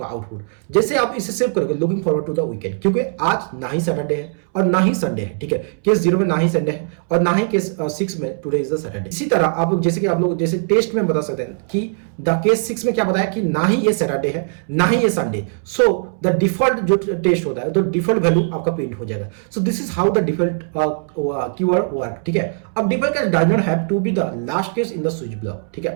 आउटपुट। जैसे आप इसे सेव करोगे looking forward to the weekend, क्योंकि आज ना ही सैटरडे है और ना ही संडे है, ठीक है। केस 0 में ना ही संडे है और ना ही केस 6 में टुडे इज द सैटरडे। इसी तरह आप लोग जैसे कि आप लोग जैसे टेस्ट में बता सकते हैं कि द केस 6 में क्या बताया कि ना ही ये सैटरडे है ना ही ये संडे, सो द डिफॉल्ट जो टेस्ट होता है तो डिफॉल्ट वैल्यू आपका प्रिंट हो जाएगा। So this is how the default keyword work, ठीक है। अब default case does not have to be the last case in the switch block, ठीक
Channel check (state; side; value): silent; left; 66 dB below the other